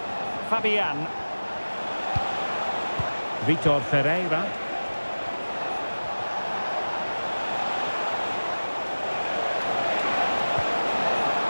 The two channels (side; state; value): both; inverted; correlation -1.00